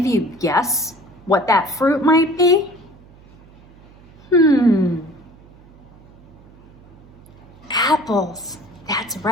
you guess what that fruit might be? Apples, that's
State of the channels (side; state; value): right; noise; hum, 25 dB below the sound